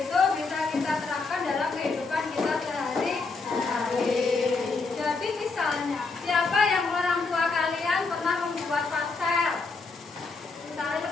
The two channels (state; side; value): quieter; right; 4.1 dB